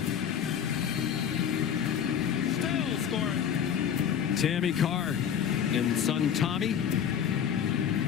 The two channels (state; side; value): quieter; right; 8.5 dB